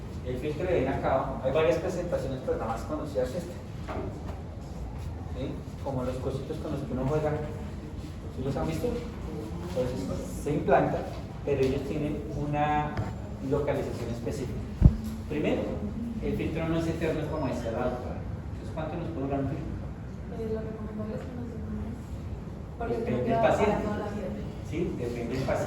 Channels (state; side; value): identical; both; correlation 1.00